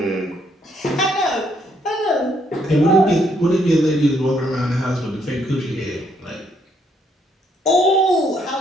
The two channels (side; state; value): both; normal; correlation 0.71